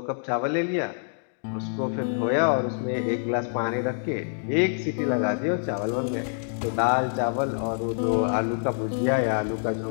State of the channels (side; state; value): right; silent; digital silence